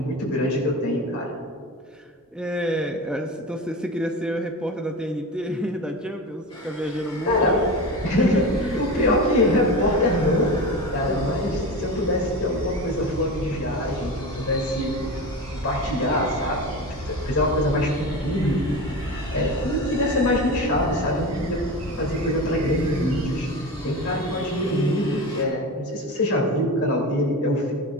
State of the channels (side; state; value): both; normal; correlation 0.27